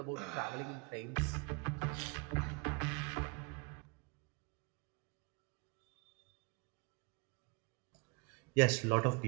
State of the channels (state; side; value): quieter; left; 31.4 dB